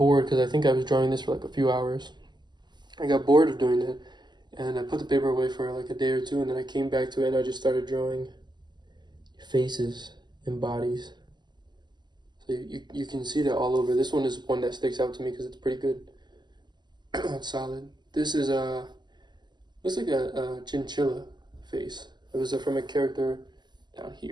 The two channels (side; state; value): left; late; 0.21 ms